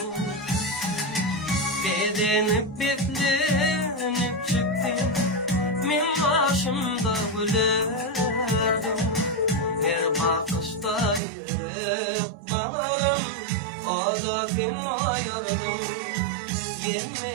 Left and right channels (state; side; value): drops out; left; at 11.2 s